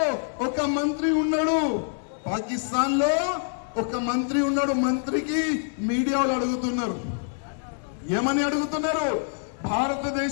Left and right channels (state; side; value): silent; right; digital silence